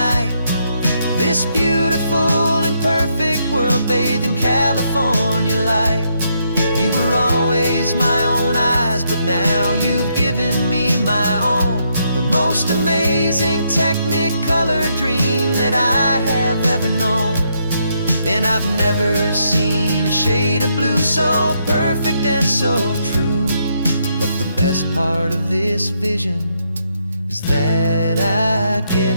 this beautiful and perfect world bathed in California light. You were always my own eyes, but now you've given me my own, the most amazing technicolor dream that I have ever known. And I've never seen a shade of blue so perfect and so true. But the best part of this vision is that I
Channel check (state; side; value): inverted; both; correlation -0.76